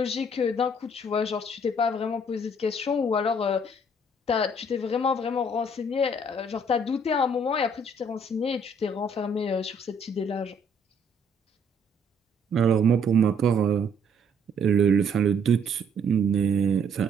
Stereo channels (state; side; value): normal; both; correlation 0.64